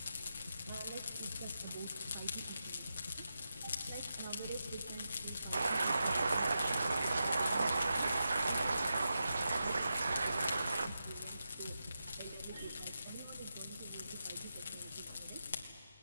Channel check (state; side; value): inverted; both; correlation -0.88